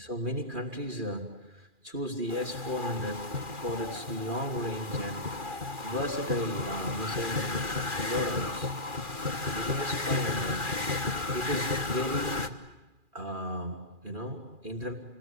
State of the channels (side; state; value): left; late; 2.4 ms